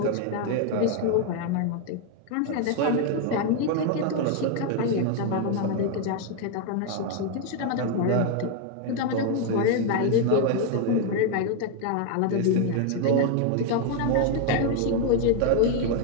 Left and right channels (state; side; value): different; both; correlation 0.01